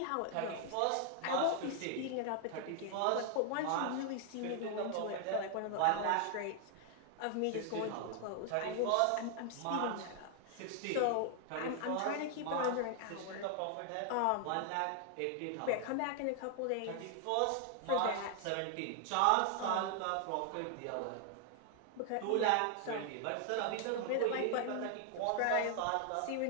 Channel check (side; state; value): both; different; correlation 0.00